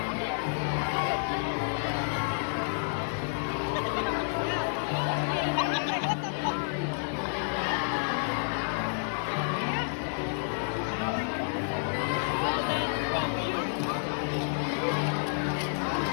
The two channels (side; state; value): right; silent; digital silence